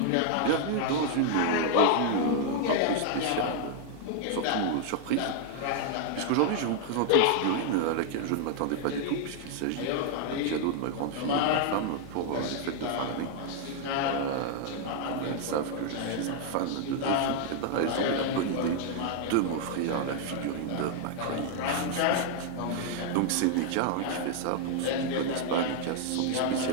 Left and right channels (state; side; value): different; both; correlation 0.00